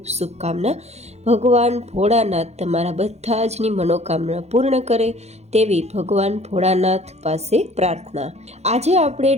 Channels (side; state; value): left; late; 0.31 ms